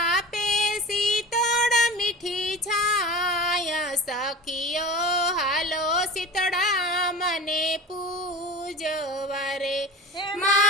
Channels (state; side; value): normal; both; correlation 0.34